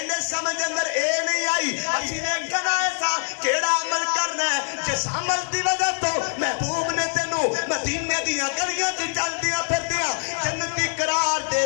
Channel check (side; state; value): right; silent; 63 dB below the other